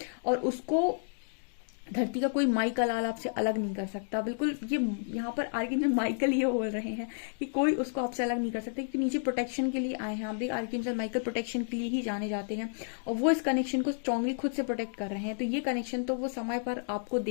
और उसको धरती का कोई माइकल आल आपसे अलग नहीं कर सकता। बिल्कुल ये यहाँ पर आर्किंजल माइकल ये बोल रहे हैं कि कोई उसको आपसे अलग नहीं कर सकता, क्योंकि नीचे प्रोटेक्शन के लिए आए हैं। आप देख, आर्किंजल माइकल प्रोटेक्शन के लिए ही जाने जाते हैं और वो इस कनेक्शन को स्ट्रांगली खुद से प्रोटेक्ट कर रहे हैं। तो ये कनेक्शन तो वो समय पर आपको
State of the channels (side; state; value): right; silent; digital silence